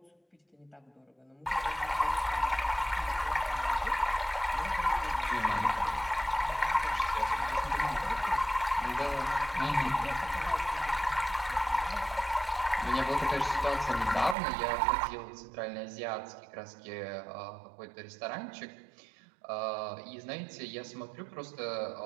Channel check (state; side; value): drops out; left; at 14.4 s